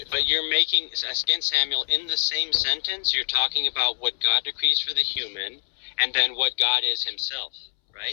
But you're making, again, Samuel, in the same sentence, you're talking about what God decrees for the human, and then what God is himself,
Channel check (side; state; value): right; silent; 62 dB below the other